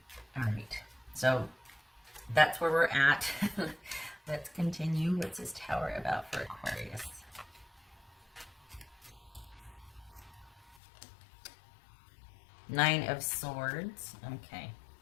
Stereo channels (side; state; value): right; drops out; at 10.8 s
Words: All right, so that's where we're at. Let's continue. What's this Tower about for Aquarius? Nine of Swords. Okay.